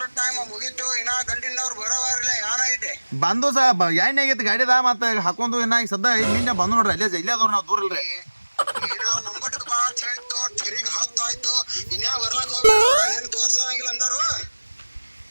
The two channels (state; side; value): inverted; both; correlation -1.00